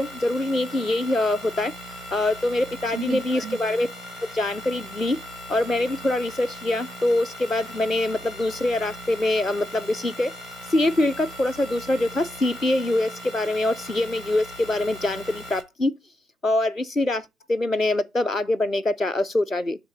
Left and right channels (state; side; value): normal; both; correlation 0.85